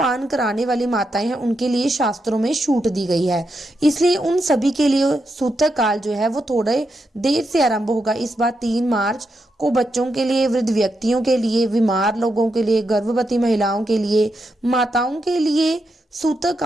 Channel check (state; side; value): normal; both; correlation 0.84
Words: कराने वाली माताएं हैं, उनके लिए शास्त्रों में छूट दी गई है। इसलिए उन सभी के लिए सूतक काल जो है वो थोड़े देर से आरंभ होगा। इस बार 3 मार्च को बच्चों के लिए, वृद्ध व्यक्तियों के लिए, बीमार लोगों के लिए, गर्भवती महिलाओं के लिए, माताओं के लिए सूतक